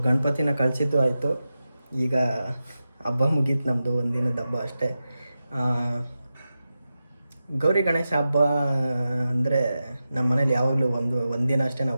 ಗಣಪತಿನ ಕಳಿಸಿದ್ದು ಆಯಿತು. ಈಗ ಹಬ್ಬ ಮುಗೀತು ನಮ್ಮದು, ಒಂದಿನದ ಹಬ್ಬ ಅಷ್ಟೇ. ಗೌರಿ ಗಣೇಶ ಹಬ್ಬ ಅಂದರೆ ನಮ್ಮ ಮನೇಲಿ ಯಾವಾಗಲೂ ಒಂದಿನ ಅಷ್ಟೇ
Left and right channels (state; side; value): inverted; both; correlation -0.92